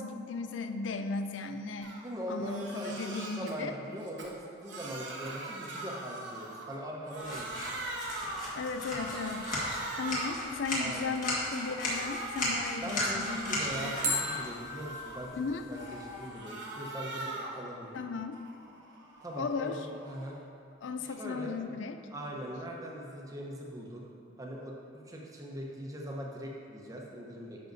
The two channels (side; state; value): both; normal; correlation 0.22